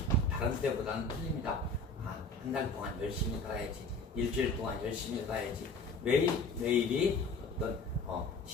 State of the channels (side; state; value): right; quieter; 3.2 dB